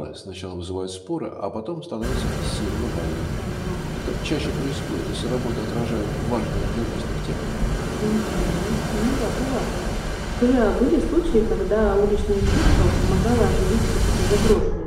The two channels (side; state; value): both; identical; correlation 1.00